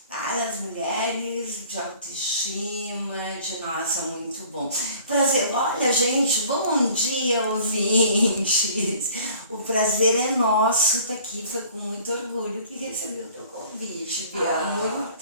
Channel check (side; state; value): both; inverted; correlation -0.51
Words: para as mulheres, de autoestima, de nossa, muito bom. Prazer, olha gente, bom dia ouvintes, o prazer é nosso estar aqui, foi com muito orgulho que recebi o teu convite, Bia,